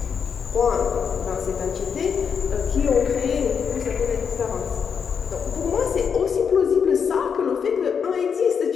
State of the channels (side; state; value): right; quieter; 6.7 dB